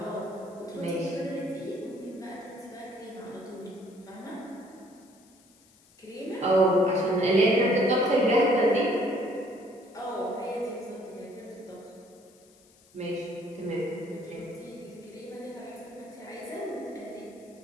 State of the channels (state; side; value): noise; left; hiss, 29 dB below the sound